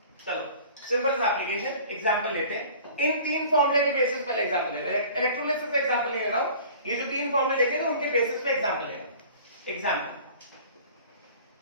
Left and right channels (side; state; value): both; inverted; correlation -0.46